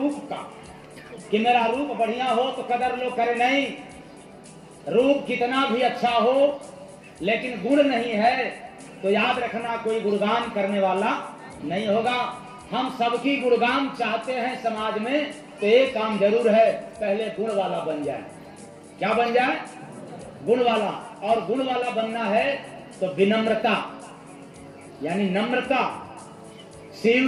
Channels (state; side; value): identical; both; correlation 1.00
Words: का, कि मेरा रूप बढ़िया हो तो कदर लो करे नहीं। रूप कितना भी अच्छा हो, लेकिन गुण नहीं है तो याद रखना कोई गुणगान करने वाला नहीं होगा। हम सबकी गुणगान चाहते हैं समाज में, तो एक काम जरूर है, पहले गुण वाला बन जाए। क्या बन जाए? गुण वाला। और गुण वाला बनना है तो विनम्रता, यानी नम्रता,